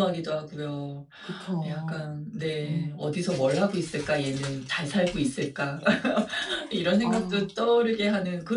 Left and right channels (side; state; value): both; identical; correlation 1.00